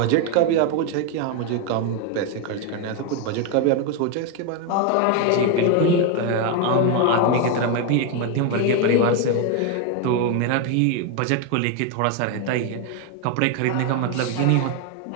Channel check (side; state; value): both; different; correlation 0.01